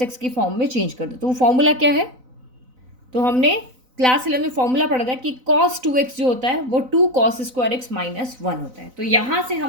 एक्स की फॉर्म में चेंज कर दो। तो वो फॉर्मूला क्या है? तो हमने क्लास 11 में फॉर्मूला पढ़ा था कि कॉस 2x जो होता है वो 2 कॉस स्क्वायर एक्स माइनस 1 होता है। तो यहाँ से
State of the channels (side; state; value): left; late; 4.0 ms